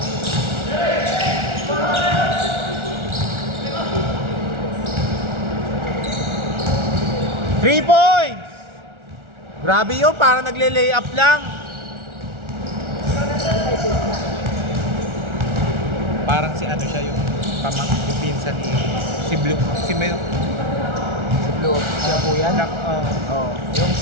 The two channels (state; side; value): late; left; 1.4 ms